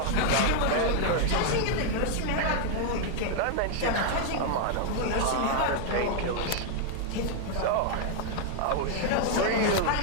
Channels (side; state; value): both; different; correlation 0.00